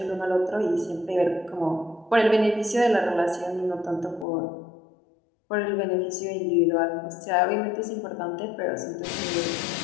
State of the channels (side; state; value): right; drops out; at 4.2 s